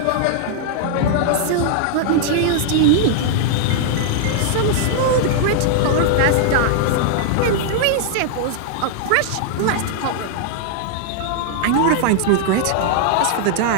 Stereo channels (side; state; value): both; different; correlation -0.01